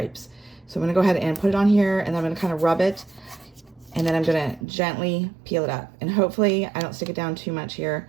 So I'm going to go ahead and put it on here, and then I'm going to kind of rub it. And then I'm going to gently peel it up. And hopefully I don't stick it down too much here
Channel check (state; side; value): drops out; left; at 4.7 s